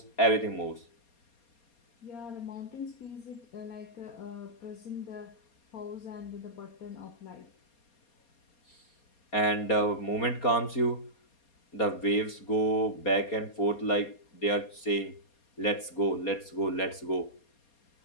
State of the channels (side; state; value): right; late; 4.3 ms